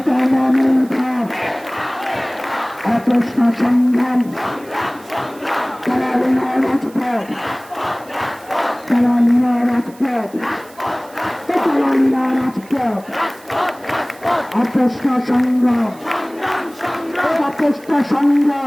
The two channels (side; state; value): right; noise; hiss, 24 dB below the sound